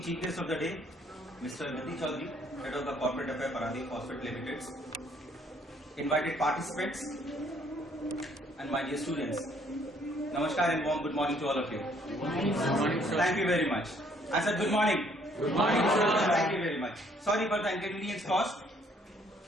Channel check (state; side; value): normal; both; correlation 0.64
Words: chief guest of the day, Mr. Niti Chaudhary, head of the Corporate Affairs Paradip Phosphate Limited, invited participants, and my dear students. Namaskar and warm good morning to all of you. Good morning, sir. Thank you very much. I said good morning. Good morning, sir. Thank you very much. Sorry for the inconvenience caused.